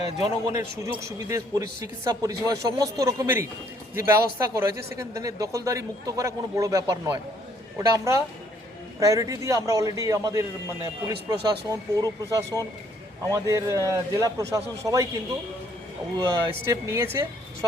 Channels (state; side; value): normal; both; correlation 0.65